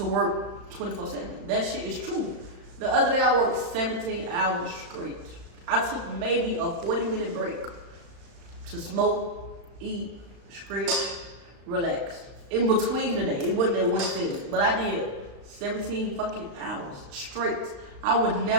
work 24/7. That shit is true. The other day I worked 17 hours straight. I took maybe a 40-minute break to smoke, eat, stretch, relax. In between the day, it wasn't that one thing, but I did 17 fucking hours straight. I would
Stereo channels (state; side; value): late; left; 35 ms